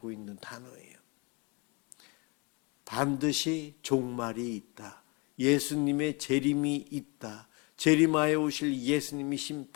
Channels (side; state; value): right; quieter; 29.2 dB